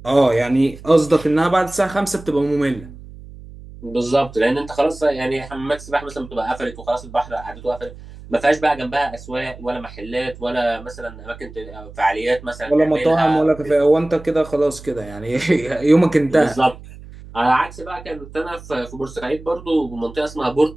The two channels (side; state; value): right; noise; hum, 17 dB below the sound